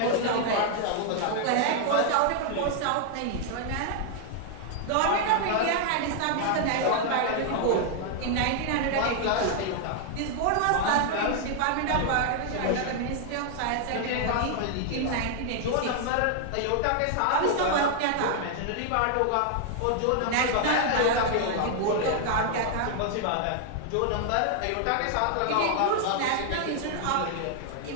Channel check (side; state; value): both; different; correlation 0.00